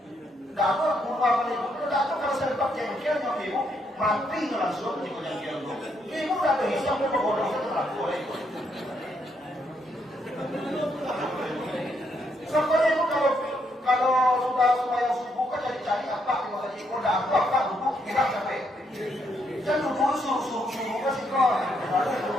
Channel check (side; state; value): both; normal; correlation 0.75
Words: dapat bunuh ibu itu dapat kalau saya dapat jengkel yang ibu mati langsung di jengkel itu. Ibu udah berhisap ibu bodoh itu laku itu. Sampai ibu kalau sudah yang subuh kan jadi cari apa kalau tadi ibu udah apa duduk kita sampai kan duduk suruh kan sih kok ada